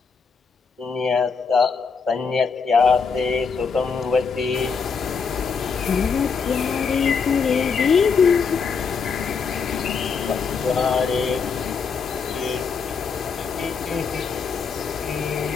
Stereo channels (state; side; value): quieter; right; 5.6 dB